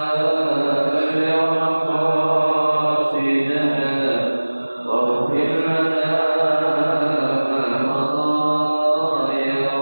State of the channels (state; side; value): inverted; both; correlation -1.00